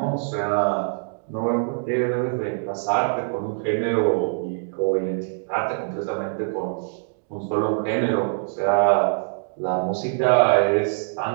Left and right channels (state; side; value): silent; left; digital silence